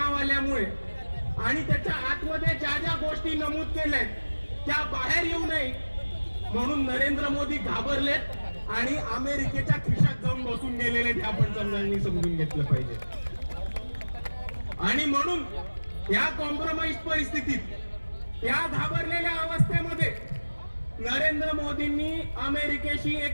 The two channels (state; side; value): inverted; both; correlation -1.00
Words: आल्यामुळे आणि त्याच्या आतमध्ये ज्या ज्या गोष्टी नमूद केल्यात त्या बाहेर येऊ नये म्हणून नरेंद्र मोदी घाबरलेत आणि अमेरिकेच्या खिशात जाऊन बसून गेलेले ते आपण समजून घेतलं पाहिजे। आणि म्हणून या कॉम्प्रोमाइज परिस्थितीत, या घाबरलेल्या अवस्थेमध्ये नरेंद्र मोदींनी अमेरिकेशी